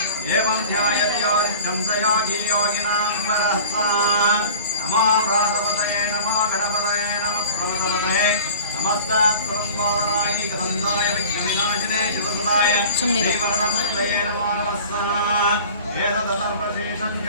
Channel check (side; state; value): both; inverted; correlation -0.41